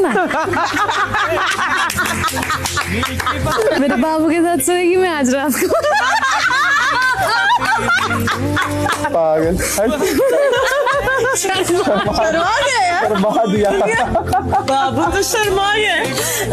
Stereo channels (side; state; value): both; identical; correlation 1.00